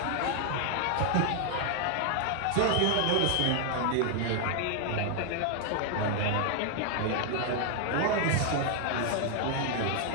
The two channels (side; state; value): both; different; correlation 0.00